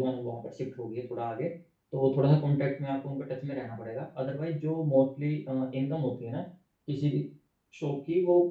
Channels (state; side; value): identical; both; correlation 1.00